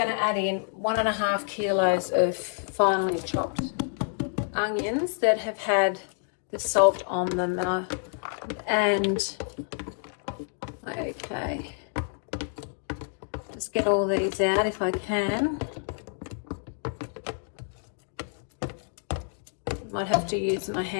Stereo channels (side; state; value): right; silent; 56 dB below the other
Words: to add in 1.5 kilos of finely chopped onions that have had the salt on them. Okay, just get all these out if I can. Might have to use my